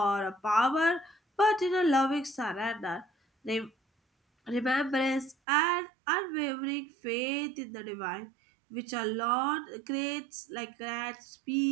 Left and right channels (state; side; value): drops out; left; at 5.4 s